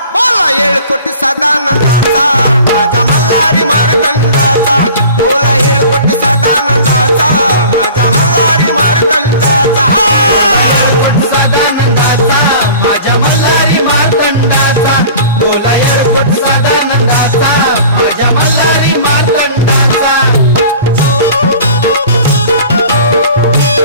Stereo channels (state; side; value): inverted; both; correlation -0.43